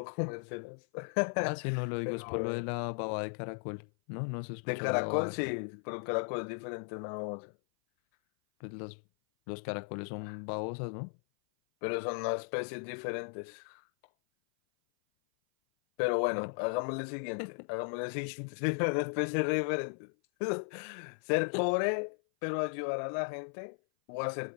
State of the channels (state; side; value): silent; right; 54 dB below the other